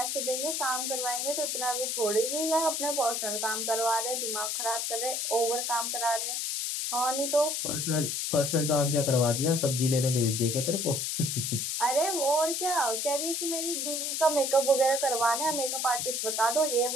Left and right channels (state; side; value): noise; left; hiss, 1 dB below the sound